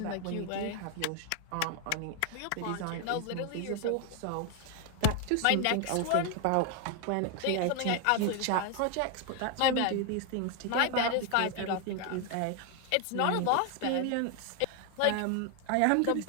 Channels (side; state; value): both; different; correlation 0.01